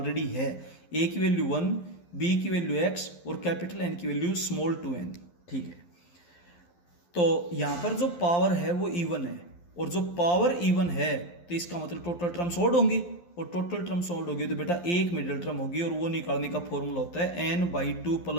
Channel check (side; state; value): right; late; 11 ms